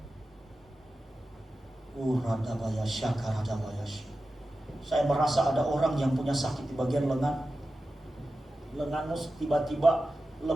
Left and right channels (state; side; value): normal; both; correlation 0.93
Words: Saya merasa ada orang yang punya sakit di bagian lengan. Lenganmu tiba-tiba